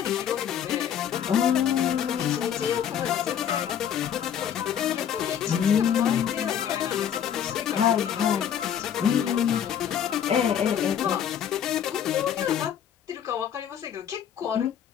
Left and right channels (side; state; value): right; quieter; 9.1 dB